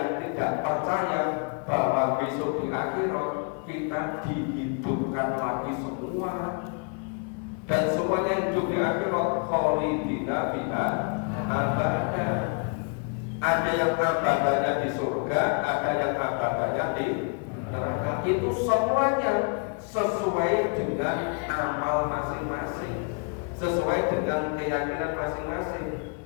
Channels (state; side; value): quieter; right; 38.4 dB